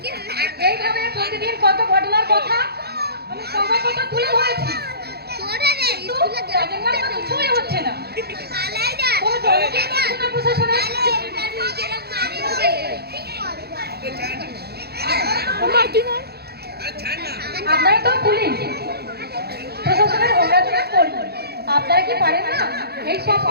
এইভাবে প্রতিদিন কত ঘটনার কথা আমি সংবাদপত্র তুলে ধরেছি, কিন্তু তাদের নামে কিছুই হচ্ছে না। কোনো জবাবই পাচ্ছে না প্রশাসনের। আপনারা তো পুলিশ প্রশাসনের অপরাধীরা করবেন, আপনারা কি পারেন না এই সব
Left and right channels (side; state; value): left; late; 0.46 ms